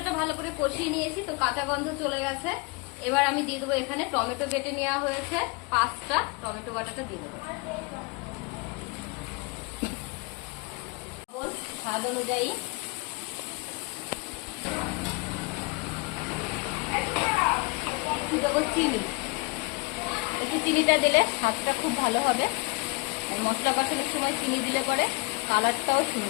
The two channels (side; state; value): right; quieter; 27.8 dB